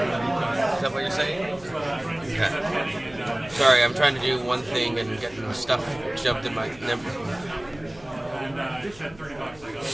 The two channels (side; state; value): left; noise; hum, 22 dB below the sound